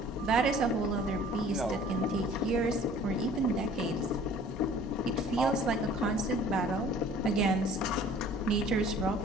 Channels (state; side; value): normal; both; correlation 0.50